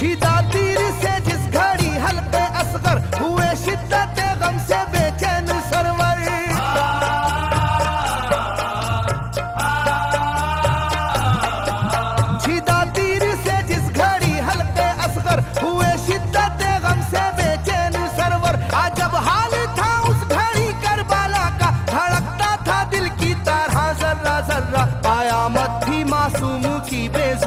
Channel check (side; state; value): both; identical; correlation 1.00